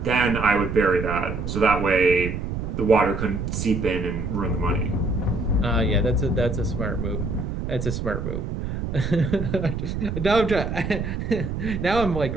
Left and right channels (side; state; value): right; noise; rumble, 4 dB below the sound